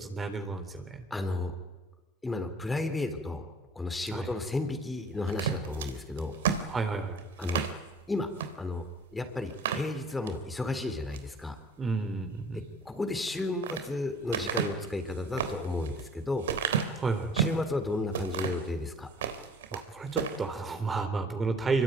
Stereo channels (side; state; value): both; normal; correlation 0.49